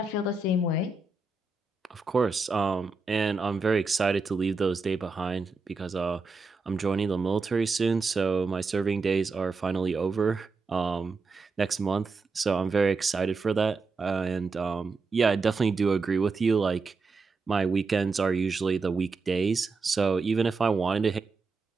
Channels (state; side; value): quieter; left; 4.1 dB